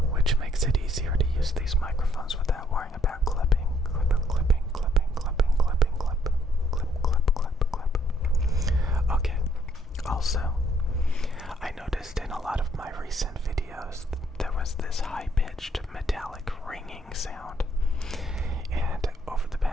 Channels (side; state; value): both; normal; correlation 0.68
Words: which makes it easier to use these microphones without worrying about clipping. Okay, also, I noticed in a lot of my recent videos there was this high-pitched metallic ringing sound, and over the